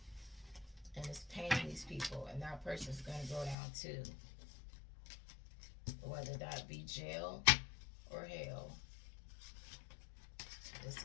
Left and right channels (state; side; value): drops out; right; at 3.6 s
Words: and it's paying these people, and that person's going to go down too, whether that be jail or hell. It's